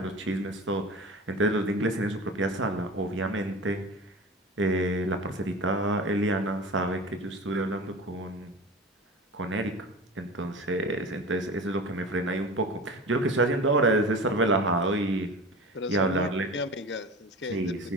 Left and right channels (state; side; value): normal; both; correlation 0.34